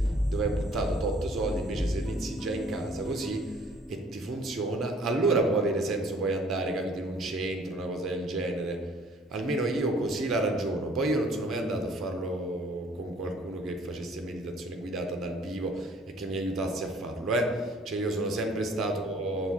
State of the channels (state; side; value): normal; both; correlation 0.57